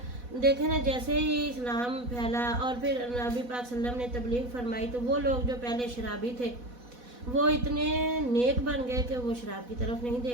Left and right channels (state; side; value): late; left; 4.1 ms